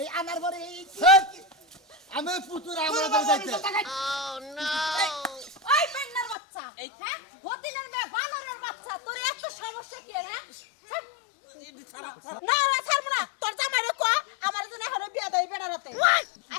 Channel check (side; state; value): right; drops out; at 6.4 s